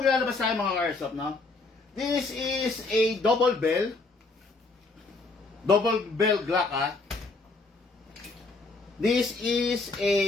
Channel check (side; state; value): right; quieter; 3.6 dB